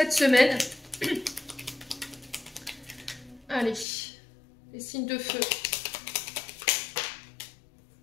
semaine. Allez, les signes de feu.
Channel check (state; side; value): drops out; right; at 3.9 s